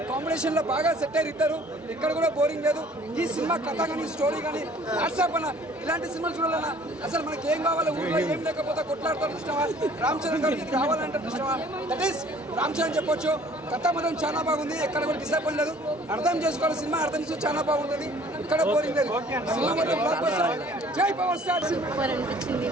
కాంబినేషన్ లో బాగా సెట్ అయ్యి ఇద్దరు. ఇక్కడ కూడా బోరింగ్ లేదు. ఈ సినిమా కథ కానీ స్టోరీ కానీ వాట్సాప్ అన్న ఇలాంటి సినిమాలు చూడాలన్నా అసలు మనకి ఏం కావాలి, ఊళ్ళో ఏం లేకపోతే కొట్లాడతారు ఇష్టమా, రామ్ చరణ్ గారికి ఇది కావాలంటే ఇష్టమా, దట్ ఈస్ రామ్ చరణ్ చెప్పొచ్చు. కథ మాత్రం చాలా బాగుంది. ఎక్కడ కూడా డిసప్పాయింట్ లేదు. అర్థం చేసుకోవాలి సినిమా, అర్థం చేసి చాలా బాగుంటుంది. ఇక్కడ బోరింగ్ లేదు. సినిమా మాత్రం బ్లాక్ బస్టర్. జై పవర్ స్టార్.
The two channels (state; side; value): normal; both; correlation 0.54